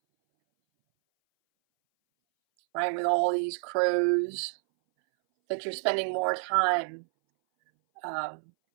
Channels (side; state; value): left; silent; 59 dB below the other